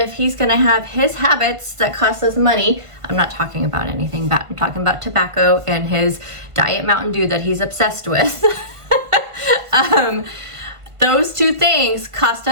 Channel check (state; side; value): late; left; 1.5 ms